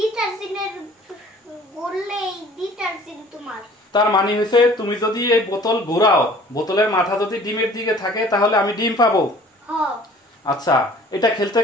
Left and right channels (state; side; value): normal; both; correlation 0.50